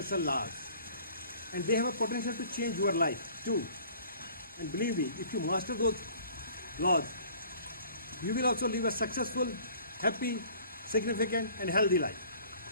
laws and they have a potential to change your life too. And believe me, if you master those laws, you will also live a successful, happy, significant and healthy life.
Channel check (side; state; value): both; inverted; correlation -0.51